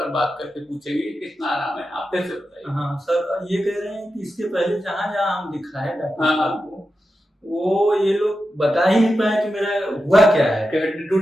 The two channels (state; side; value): normal; both; correlation 0.90